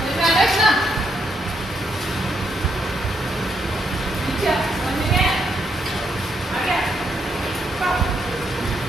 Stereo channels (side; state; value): both; normal; correlation 0.77